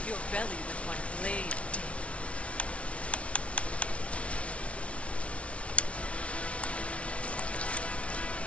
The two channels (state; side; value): late; right; 0.062 ms